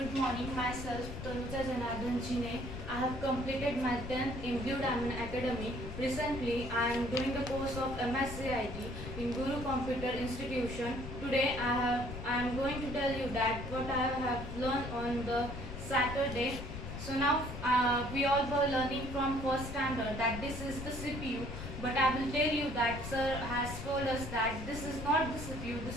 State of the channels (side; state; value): left; noise; rumble, 8 dB below the sound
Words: morning, myself Tanuja Janardhan Jine. I have completed my 10th in Blue Diamond Academy. Recently, I am doing the course of MS-CIT in Guru Computer Institution. Today, I am going to tell you that what I have learned on the Saturday. So now we all were learning from first standard that this is the CPU, but I will tell you that sir has told us that this is not the CPU,